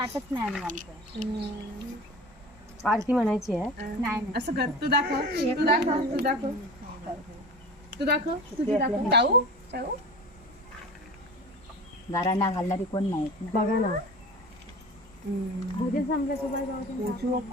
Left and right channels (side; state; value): both; normal; correlation 0.36